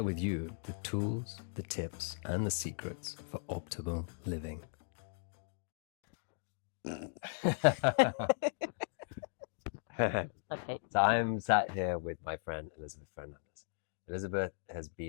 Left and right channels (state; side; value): silent; right; digital silence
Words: with you the tools, the tips, and the secrets for optimal living. Okay. So I'm sat here with my friend Elisabete Fernandes. Elisabeth has